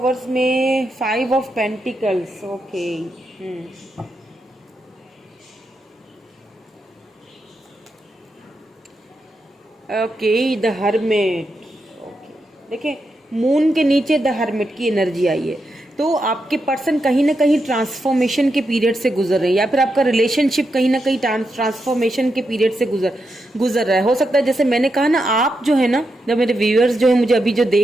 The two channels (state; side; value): normal; both; correlation 0.85